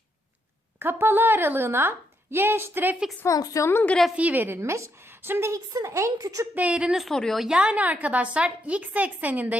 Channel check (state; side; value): normal; both; correlation 0.78